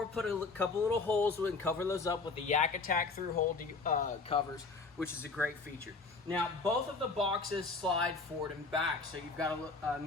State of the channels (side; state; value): right; quieter; 4.0 dB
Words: put a couple little holes and cover those up with the Yak Attack through hole covers, which is a great feature. Now, both of the boxes slide forward and back. So you've got a